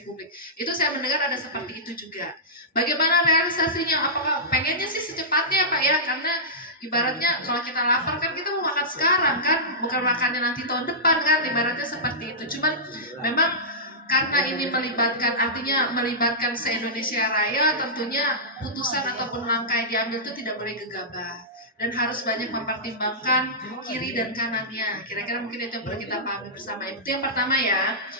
Publik. Itu saya mendengar ada seperti itu juga. Bagaimana realisasinya? Apakah pengennya sih secepatnya Pak ya? Karena ibaratnya kalau kita lapar kan kita mau makan sekarang kan, bukan makannya nanti tahun depan kan, ibaratnya seperti itu. Cuman memang karena ini melibatkan se-Indonesia Raya, tentunya putusan ataupun langkah yang diambil itu tidak boleh gegabah dan harus banyak mempertimbangkan kiri dan kanannya. Kira-kira mungkin itu yang perlu kita pahami bersama. Itu yang pertama ya.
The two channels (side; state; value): both; normal; correlation -0.16